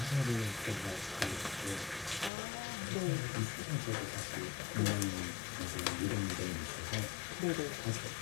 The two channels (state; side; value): drops out; right; at 2.3 s